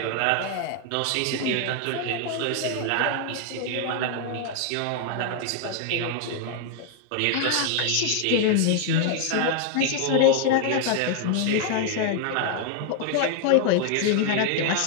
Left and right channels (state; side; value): different; both; correlation 0.00